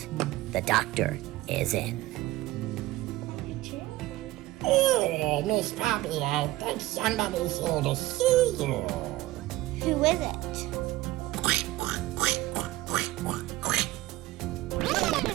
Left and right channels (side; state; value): left; quieter; 17.2 dB